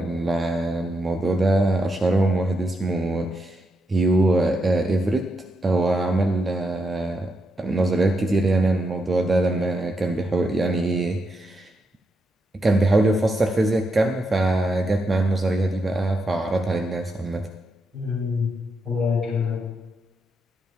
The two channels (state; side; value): normal; both; correlation 0.82